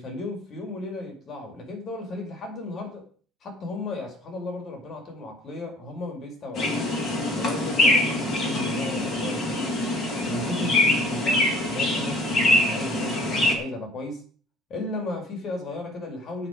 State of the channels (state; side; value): normal; both; correlation 0.54